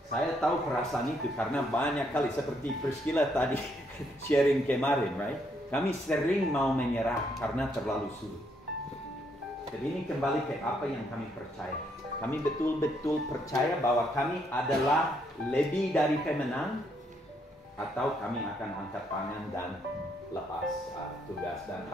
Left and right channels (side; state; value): both; normal; correlation 0.73